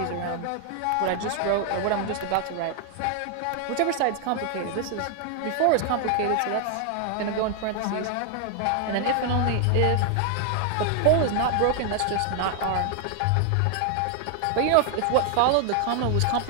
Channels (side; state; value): both; different; correlation 0.00